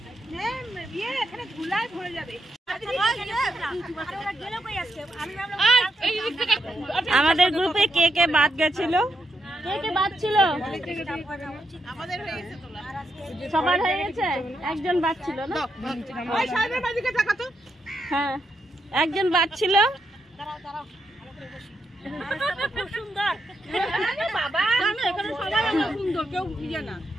আমাদের গ্রুপে কে কে বাদ গেছিল, কে কে বাদ ছিল? সবার হয়ে গেছে, একজন বাদ ছিল না? হ্যাঁ একজন বাদ ছিল।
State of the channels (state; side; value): normal; both; correlation 0.82